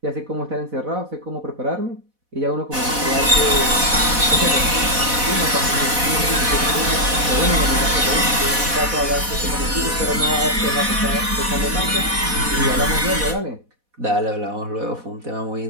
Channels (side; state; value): left; late; 4.1 ms